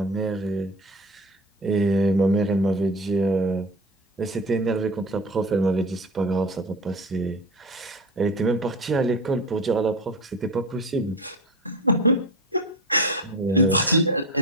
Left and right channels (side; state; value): both; normal; correlation 0.28